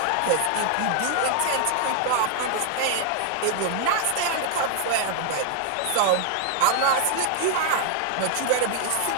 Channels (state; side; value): different; both; correlation 0.00